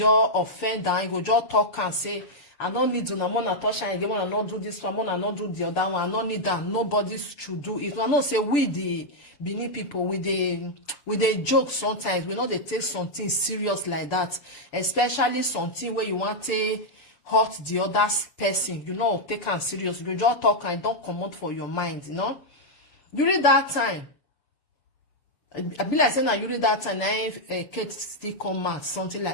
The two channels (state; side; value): late; right; 6.9 ms